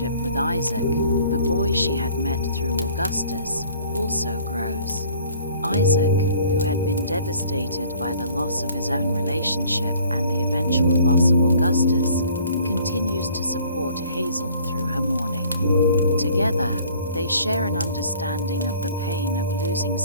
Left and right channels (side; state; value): both; inverted; correlation -0.53